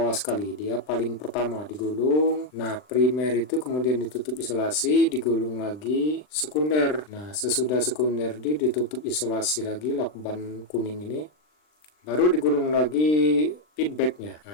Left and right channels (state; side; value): late; right; 39 ms